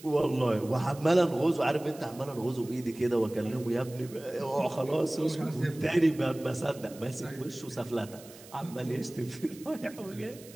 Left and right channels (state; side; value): noise; right; hiss, 20 dB below the sound